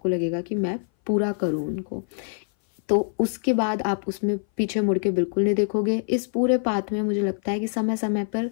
लगेगा कि मैं पूरा करूं उनको। तो उसके बाद आप उसमें पीछे मुड़ के बिल्कुल नहीं देखोगे। इस पूरे पाथ में मुझे लगता है कि समय समय पर,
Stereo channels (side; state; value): right; silent; 59 dB below the other